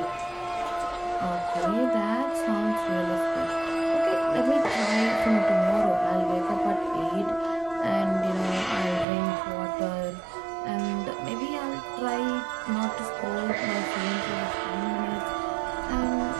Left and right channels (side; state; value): left; drops out; at 9.1 s